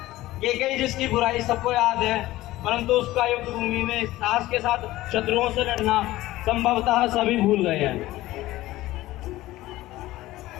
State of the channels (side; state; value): right; quieter; 16.8 dB